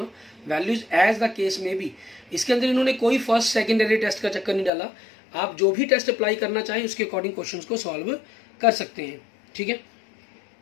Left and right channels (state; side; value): drops out; right; at 4.7 s